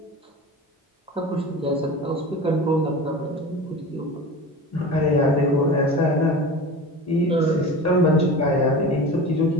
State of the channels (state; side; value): normal; both; correlation 0.33